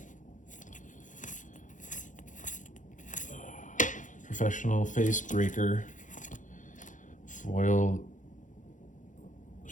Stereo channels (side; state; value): right; late; 0.37 ms